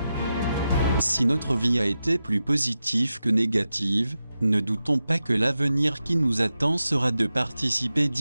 Si notre vie a été plus positive que négative, ne doutons pas que l'avenir qui nous attend sera de participer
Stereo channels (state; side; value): inverted; both; correlation -0.90